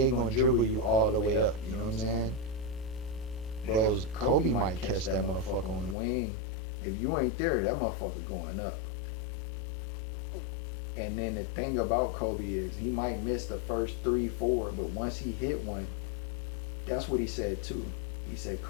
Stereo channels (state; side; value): drops out; right; at 6.0 s